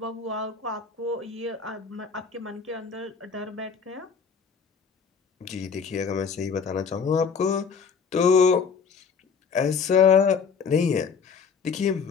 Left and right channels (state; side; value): quieter; right; 5.9 dB